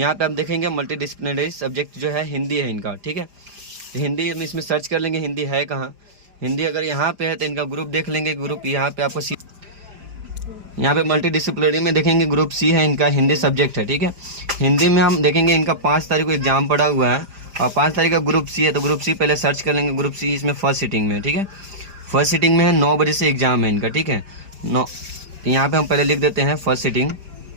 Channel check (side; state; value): left; late; 5.0 ms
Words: पे हम देखेंगे मल्टी डिसिप्लिनरी सब्जेक्ट जो है हिंदी है इनका। ठीक है, हिंदी हम इसमें सर्च कर लेंगे हिंदी है कहाँ। हिंदी अगर यहाँ पे है तो इनका ग्रुप देख लेंगे, ग्रुप यहाँ पे आपको यहाँ पे मल्टी डिसिप्लिनरी में देखेंगे ग्रुप C है इनका, हिंदी सब्जेक्ट है। ठीक है, हिंदी में हम देखेंगे इनका 5 तारीख को एग्जाम पड़ा हुआ है और 5 तारीख का ग्रुप C है, तो ग्रुप C पहले सर्च कर लेंगे। ग्रुप C इसमें फर्स्ट सीटिंग में। ठीक है, फर्स्ट सीटिंग में है, 9 बजे से एग्जाम है इनका। ठीक है, 9, तो यहाँ पे हम पहले लिख देते हैं फर्स्ट सीटिंग,